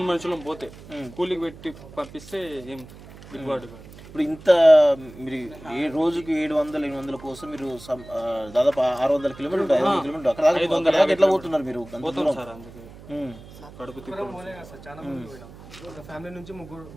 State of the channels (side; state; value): right; noise; hum, 18 dB below the sound